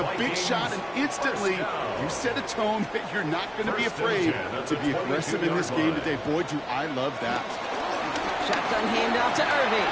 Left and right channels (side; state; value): both; identical; correlation 1.00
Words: big shot, and instantly you set a tone that you're not going to be afraid to be aggressive in this game today. Boy, do I love that. Shotgun handoff to Irving.